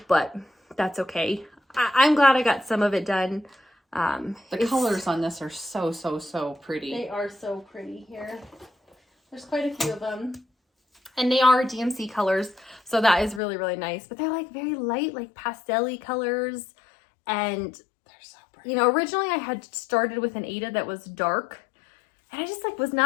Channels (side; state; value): right; drops out; at 13.4 s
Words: but that's okay. I'm glad I got some of it done. The colors on this are so pretty. They are so pretty here. There's quite a few of them. And they are DMC colors, so that is really, really nice. But they're like very light, like pastel-y colors. And they're so pretty. You know, originally I had started with an Ada that was dark, and I just like was